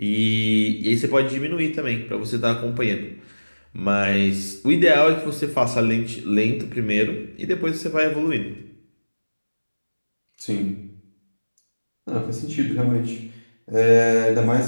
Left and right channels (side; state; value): both; inverted; correlation -1.00